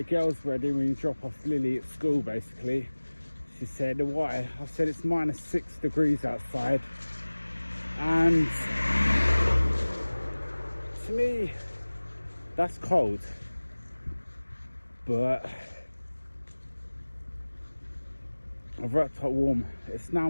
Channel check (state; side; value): inverted; both; correlation -1.00